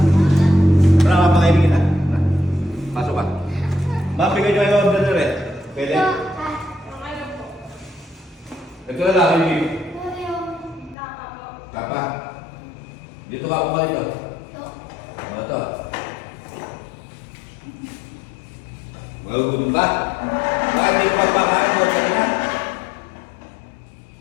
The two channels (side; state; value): right; drops out; at 11.0 s